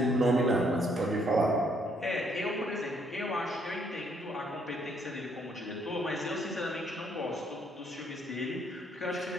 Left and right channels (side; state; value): both; normal; correlation 0.69